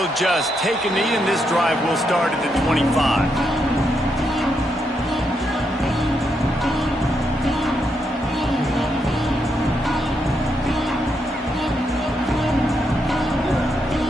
just take a knee, and this drive will start at the 25.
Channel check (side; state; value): both; normal; correlation 0.80